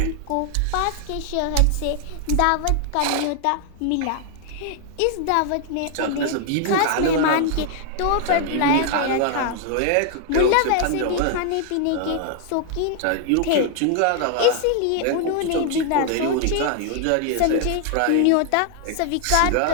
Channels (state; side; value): different; both; correlation 0.00